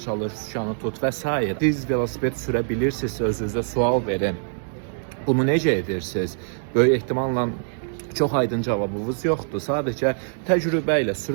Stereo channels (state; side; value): silent; left; digital silence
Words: çalış, sükanı tut və s. Siz velosiped sürə bilirsiniz, özünüzə sual verin. Bunu necə edirsiniz? Böyük ehtimalla çox aydın cavabınız yoxdur. Sadəcə təcrübə ilə